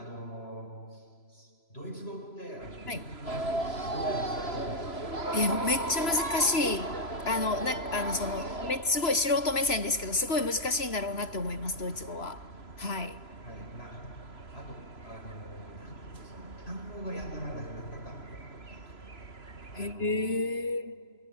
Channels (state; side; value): late; right; 3.0 ms